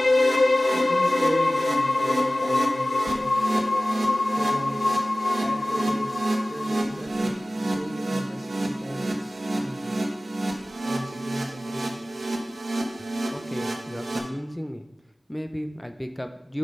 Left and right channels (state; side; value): normal; both; correlation 0.97